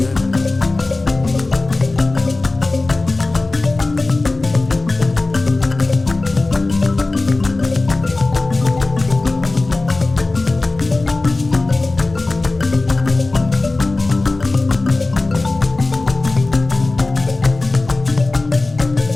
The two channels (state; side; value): quieter; right; 3.2 dB